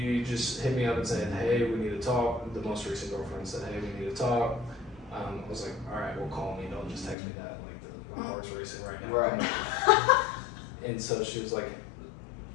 just hit me up and said, hey, we need to talk. The most recent girlfriend said, hey, we need to talk. I was like, all right, well, call me. Don't just text me that. Like, my heart's racing right now. Right. And so she was like,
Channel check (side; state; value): right; drops out; at 7.2 s